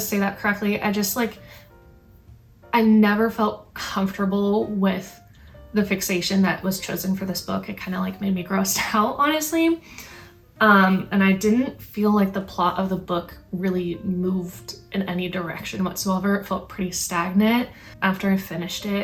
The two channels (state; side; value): identical; both; correlation 1.00